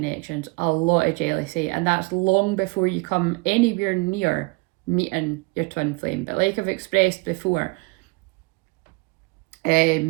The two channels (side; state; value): left; quieter; 27.3 dB